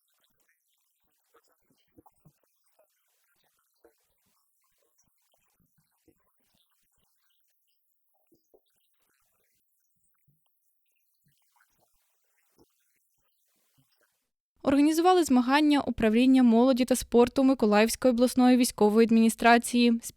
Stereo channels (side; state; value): both; identical; correlation 1.00